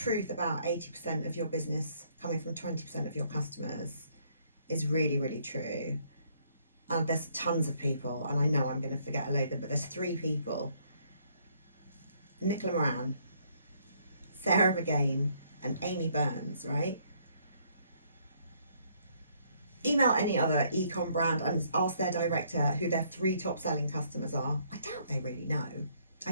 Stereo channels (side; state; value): both; inverted; correlation -0.67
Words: about 80% of your business coming from 20% of your customers is really, really true. And there's tons of people, and I know I'm going to forget a load of them, but there's 3 people: Nicola Moran, Sarah Vergain, and Amy Burns, right? email any other e-com brand and ask their director who their 3 top selling customers are. I doubt they really know. I